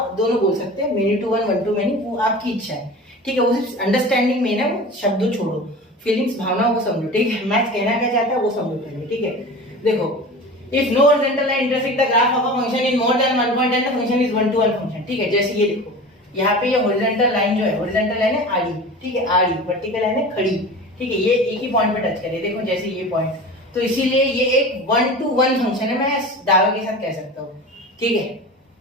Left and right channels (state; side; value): normal; both; correlation 0.35